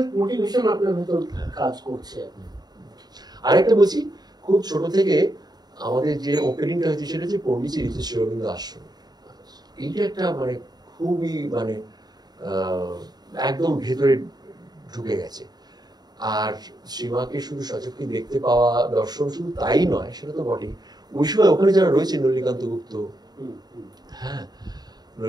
মোটিভেশন আপনার ভিতর কাজ করছে। আরেকটা বলছি, খুব ছোট থেকে আমাদের যে ওপেনিংটা হয়েছে সেটা হচ্ছে পন্ডিচেরিতে শ্রী অরবিন্দ আশ্রম। এইটা একটা মানে খুবই মানে একদম ভেতরে ঢুকে গেছে। আর শ্রীমাকে শুধু সচক্ষে দেখতে পাওয়া, দর্শন শুধু তাই নয়, সেটা তো বটেই, ওই সময় ওখানে যারা রয়েছে, নলিকান্ত গুপ্ত, হ্যাঁ,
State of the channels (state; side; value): late; left; 0.20 ms